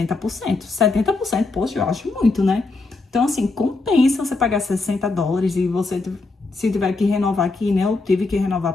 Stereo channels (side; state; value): right; quieter; 3.6 dB